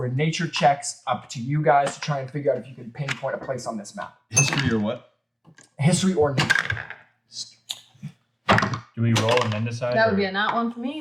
nature checks, up to you guys, to try and figure out if you can pinpoint a place on this map. History or what? History or nature. Do we roll and then decide? That would or- be a nat one for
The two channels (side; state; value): both; identical; correlation 1.00